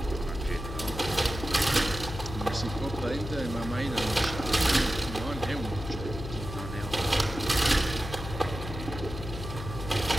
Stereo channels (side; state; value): left; noise; hum, 8 dB below the sound